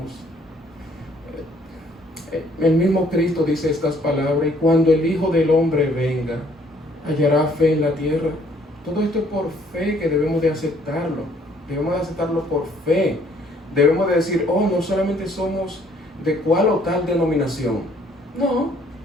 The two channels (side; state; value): both; normal; correlation 0.63